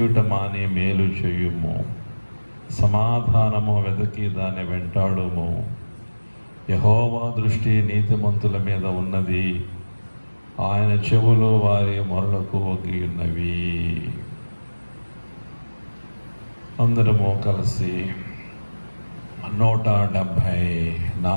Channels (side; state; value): both; inverted; correlation -1.00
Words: మాని మేలు చేయుము. సమాధానము వెతకి దాన్ని వెంటాడుము. యెహోవా దృష్టి నీతిమంతుల మీద ఉన్నది, ఆయన చెవులు వారి మొరలకు ఒగ్గి ఉన్నవి. అందరము కలిసి